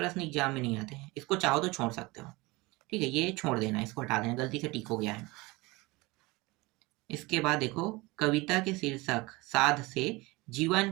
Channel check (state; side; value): quieter; left; 23.0 dB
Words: एग्जाम में नहीं आते हैं, इसको चाहो तो छोड़ सकते हो। ठीक है, ये छोड़ देना, इसको हटा देना, गलती से टिक हो गया है। इसके बाद देखो, कविता के शीर्षक साध से